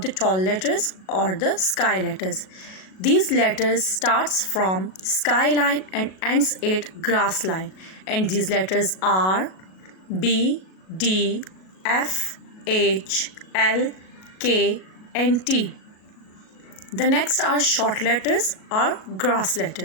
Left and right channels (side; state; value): right; late; 37 ms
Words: the tall letters or the sky letters. These letters starts from sky line and ends at grass line, and these letters are B, D, F, H, L, K and T. The next are short letters or grass